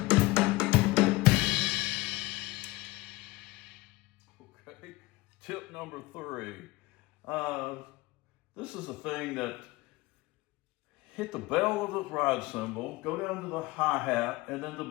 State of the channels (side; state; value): right; quieter; 20.9 dB